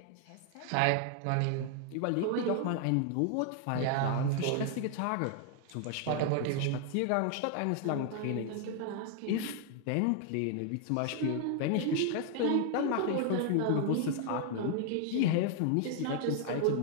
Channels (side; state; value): both; different; correlation 0.00